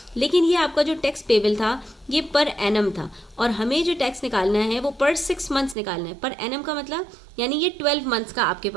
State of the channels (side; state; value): left; drops out; at 5.8 s